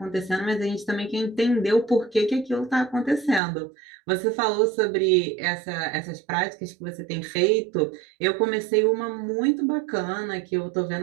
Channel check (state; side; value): drops out; left; at 3.4 s